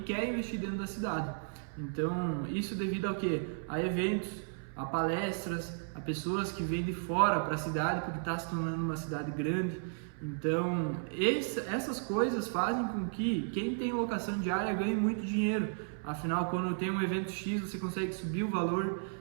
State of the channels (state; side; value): silent; left; 55 dB below the other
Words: quer investir dentro da cidade. Então, isso devido ao quê? A eventos, a palestras, a pessoas que vêm de fora para a cidade, porque está se tornando uma cidade grande. Então, essas coisas fazem com que quem tem locação diária ganhe muito dinheiro. Afinal, quando tem um evento X, você consegue subir o valor,